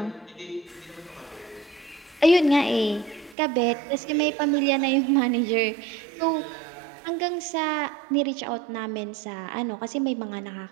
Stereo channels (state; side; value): drops out; left; at 3.4 s